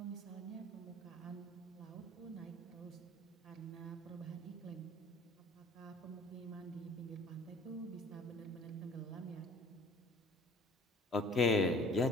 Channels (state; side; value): normal; both; correlation 0.51